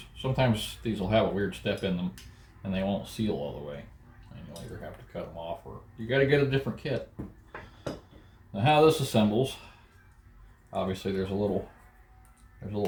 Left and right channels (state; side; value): identical; both; correlation 1.00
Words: these will have a weird step in them and they won't seal all the way. And you'll either have to cut them off or you got to get a different kit. Now how this assembles, obviously there's a little